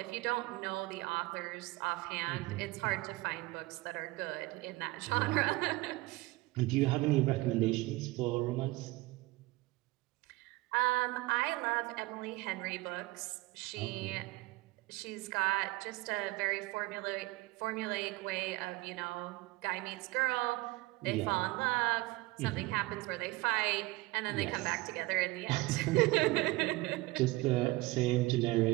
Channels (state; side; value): quieter; left; 21.0 dB